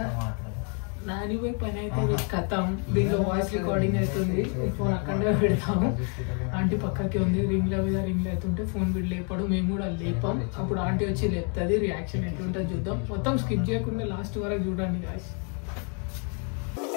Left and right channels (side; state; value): right; quieter; 39.4 dB